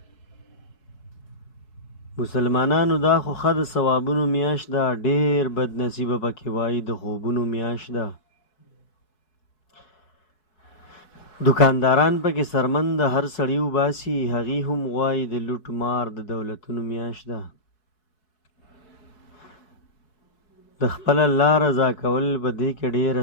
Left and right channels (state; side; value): late; right; 4.7 ms